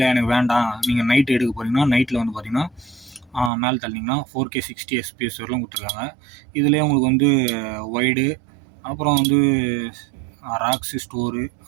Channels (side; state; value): left; drops out; at 3.5 s